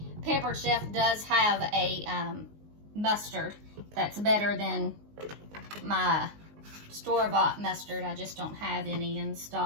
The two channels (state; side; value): late; left; 19 ms